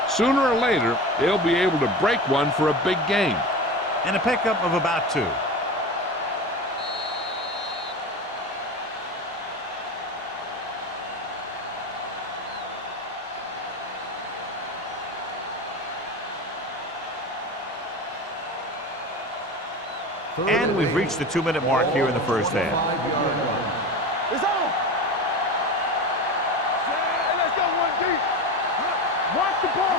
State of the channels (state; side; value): normal; both; correlation 0.28